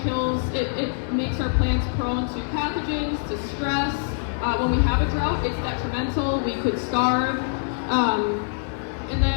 makes our plants prone to pathogens, to stress. When we have a drought, it's detrimental. We could starve. And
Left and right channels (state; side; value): silent; right; 62 dB below the other